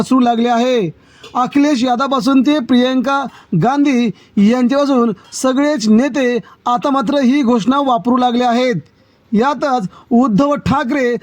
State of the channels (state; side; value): identical; both; correlation 1.00